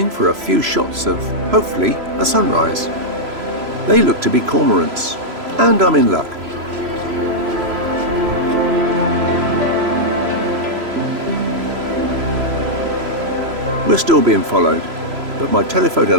for a few shots of, hopefully, a sunrise. They look to be cormorants, and I'm in luck. We're still being followed, but my telephoto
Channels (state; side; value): late; left; 3.0 ms